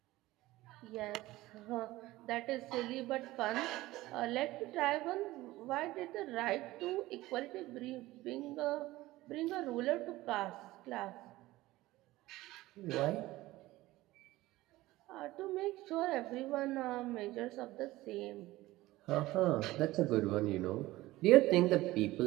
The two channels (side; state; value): left; quieter; 17.9 dB